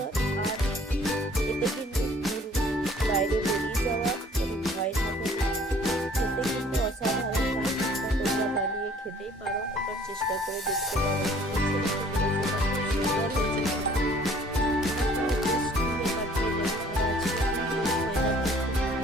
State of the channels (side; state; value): both; normal; correlation 0.55